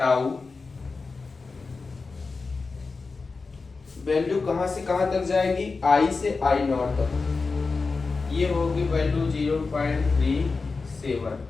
वैल्यू कहां से कहां तक जाएगी, आई से आई नॉट तक। ये होगी वैल्यू 0.37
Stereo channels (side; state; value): right; quieter; 4.2 dB